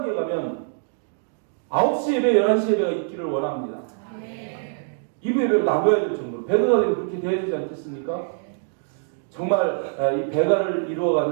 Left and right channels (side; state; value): left; silent; digital silence